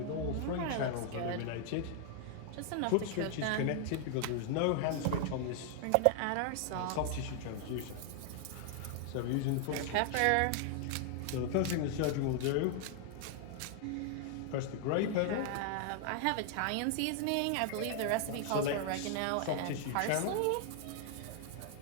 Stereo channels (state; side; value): different; both; correlation 0.00